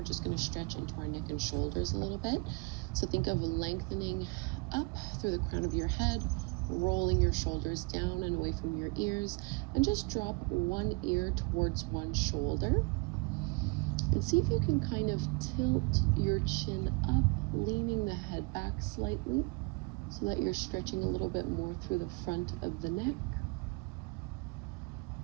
just going to stretch into our neck and shoulders a little bit. So think of lengthening up through the crown of your head, rolling your shoulders down and away from your ears, and just drop one ear towards one shoulder. And see if you can kind of tilt your chin up, leaning the head back slightly so that you're stretching a little bit more through the front of the neck.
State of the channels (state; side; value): quieter; left; 29.4 dB